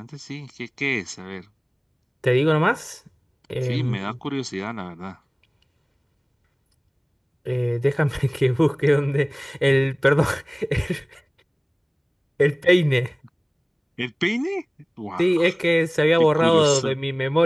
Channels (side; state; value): both; identical; correlation 1.00